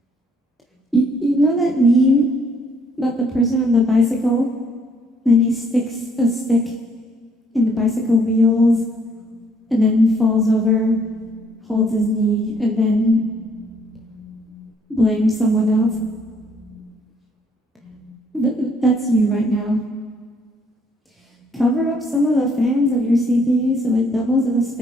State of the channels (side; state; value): both; normal; correlation 0.66